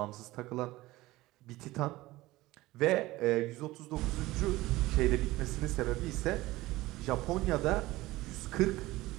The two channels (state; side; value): quieter; left; 18.6 dB